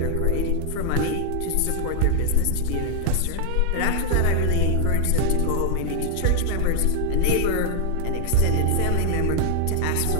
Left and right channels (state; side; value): different; both; correlation 0.00